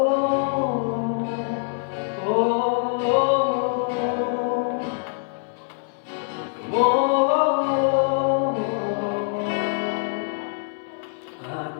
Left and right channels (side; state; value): right; silent; digital silence